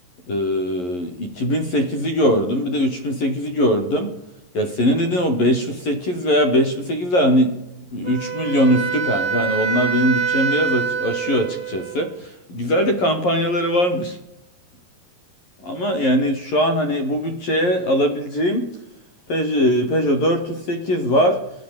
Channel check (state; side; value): late; right; 11 ms